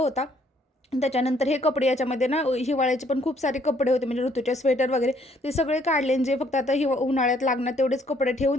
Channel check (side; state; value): both; normal; correlation 0.65